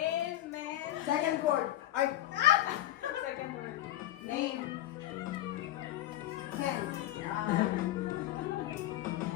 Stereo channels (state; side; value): quieter; right; 14.1 dB